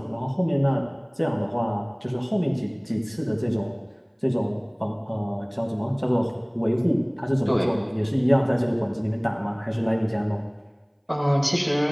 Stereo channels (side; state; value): both; identical; correlation 1.00